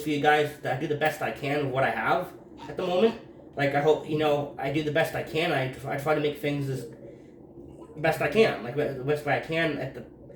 for you guys. That I do the best I can with what I have at the moment. Like I hope I do the best I can. I try to make things as best I can, like the best way I can.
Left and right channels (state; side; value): identical; both; correlation 1.00